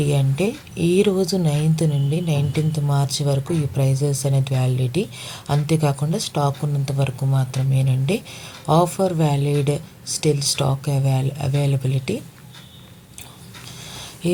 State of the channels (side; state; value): both; identical; correlation 1.00